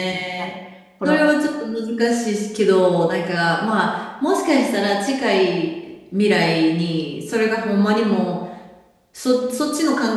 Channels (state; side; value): identical; both; correlation 1.00